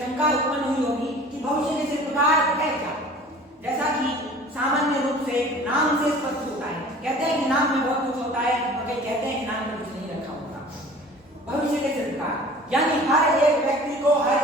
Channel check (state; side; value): normal; both; correlation 0.45